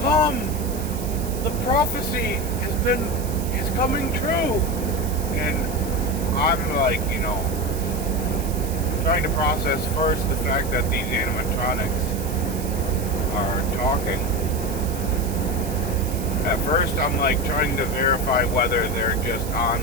The prophecy is coming true. And I'm like, trying to process first the fact that these animatronics are talking. At first I'm like trying to verify whether they're just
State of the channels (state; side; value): noise; right; hiss, 13 dB below the sound